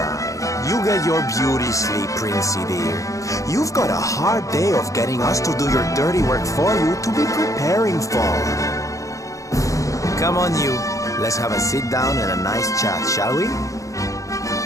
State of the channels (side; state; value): right; late; 0.16 ms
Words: You get your beauty sleep, Princey dear. You've got a hard day of getting us to do your dirty work for you to be preparing for. Come on, you. Let's have a sit down and a nice chat, shall we?